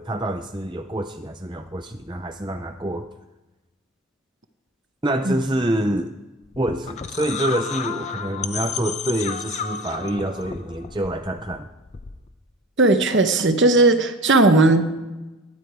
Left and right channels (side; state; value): both; normal; correlation 0.38